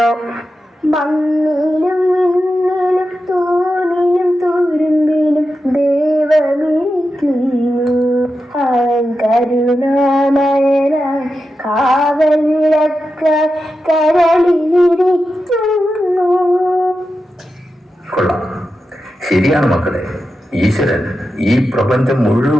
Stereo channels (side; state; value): both; normal; correlation 0.90